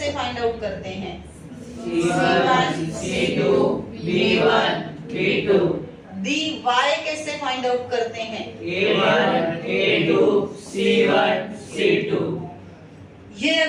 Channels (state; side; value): identical; both; correlation 1.00